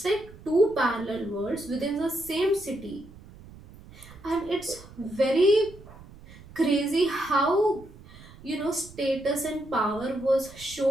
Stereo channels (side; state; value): right; noise; rumble, 20 dB below the sound